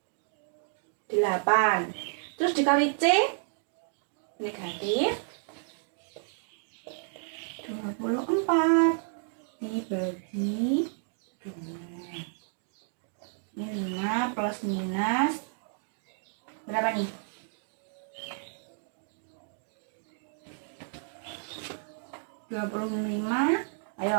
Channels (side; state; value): left; silent; digital silence